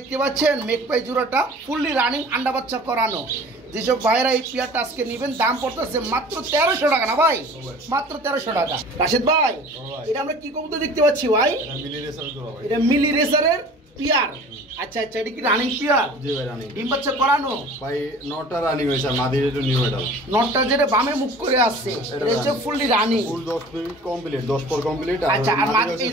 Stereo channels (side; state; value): both; normal; correlation 0.44